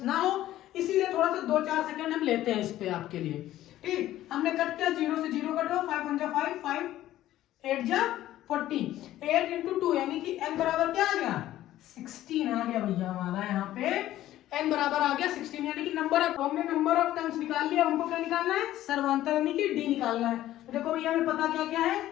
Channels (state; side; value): quieter; right; 13.9 dB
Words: ना हो, इसीलिए थोड़ा सा 2-4 सेकंड हम लेते हैं इस पे आपके लिए। ठीक, हमने कट किया, 0 से 0 कटो, 5 1 5, 5 8 जा 40, 8 into 2 यानी कि n बराबर क्या आ गया, 16 आ गया भैया हमारा। यहाँ पे n बराबर आ गया 16, यानी कि नंबर ऑफ, हमने नंबर ऑफ टर्म्स निकाल लिया। हमको क्या निकालना है, सर्वांतर यानी कि d निकालना है। तो देखो भैया हमें पता क्या क्या है,